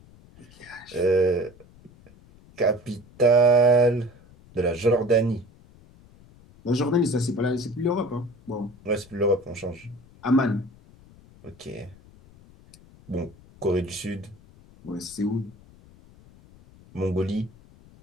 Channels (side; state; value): left; noise; rumble, 25 dB below the sound